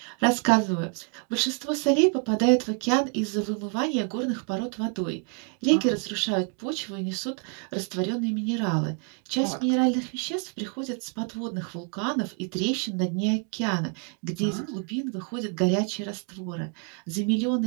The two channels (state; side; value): quieter; left; 38.1 dB